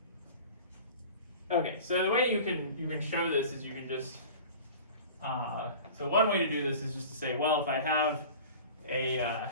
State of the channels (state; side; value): inverted; both; correlation -0.39